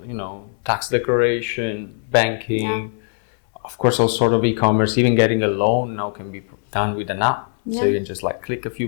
tax declaration, banking, of course all sort of e-commerce, even getting a loan now can be done with an app. So you can just like click a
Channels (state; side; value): silent; right; 64 dB below the other